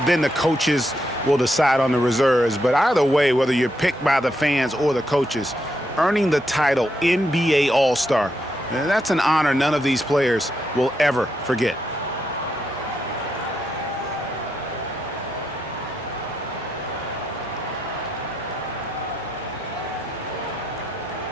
the coaches will decide on the reserves. But either way, whether you're picked by the fans or the coaches, earning the title NBA All-Star, that's an honor none of these players will ever forget.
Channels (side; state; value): both; normal; correlation 0.81